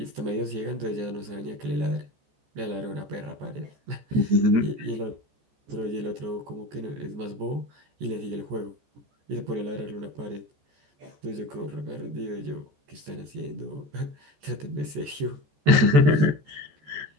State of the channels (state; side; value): late; left; 14 ms